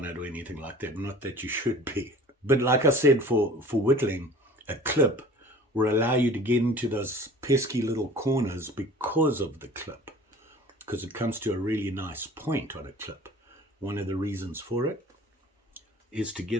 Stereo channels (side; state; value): both; normal; correlation 0.44